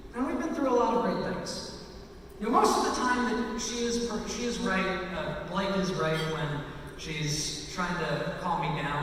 And we've been through a lot of great things. You know, most of the time that she is right, Blake is right when she's trying to calm me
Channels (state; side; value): identical; both; correlation 1.00